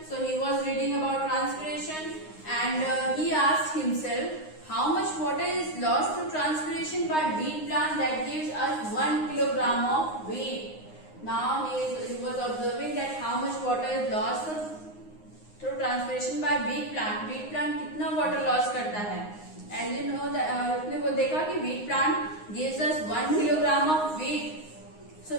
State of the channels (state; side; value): late; right; 9.6 ms